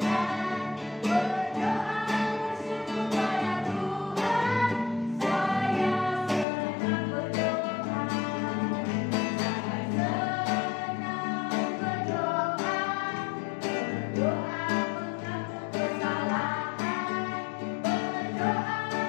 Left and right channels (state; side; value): drops out; right; at 6.5 s